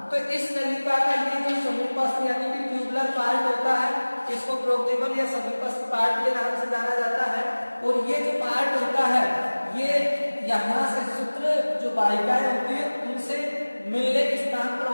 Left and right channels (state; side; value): inverted; both; correlation -1.00